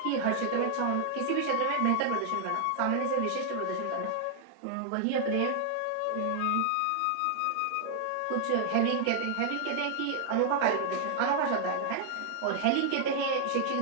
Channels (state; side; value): different; both; correlation 0.00